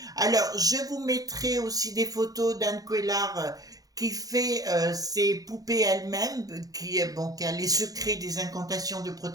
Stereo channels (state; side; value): late; left; 0.18 ms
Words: Alors, je vous mettrai aussi des photos d'Anne Couillard qui fait ses poupées elle-même, qui a les secrets des incantations de